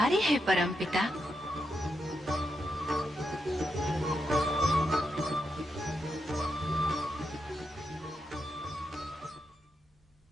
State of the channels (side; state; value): both; normal; correlation 0.84